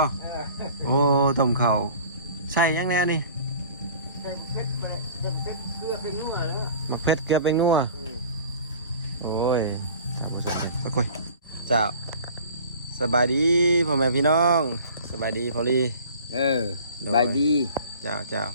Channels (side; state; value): both; inverted; correlation -0.45